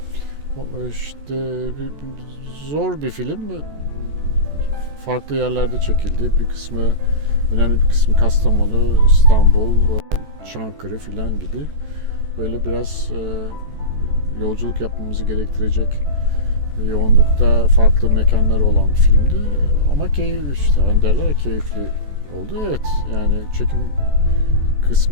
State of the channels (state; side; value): late; left; 14 ms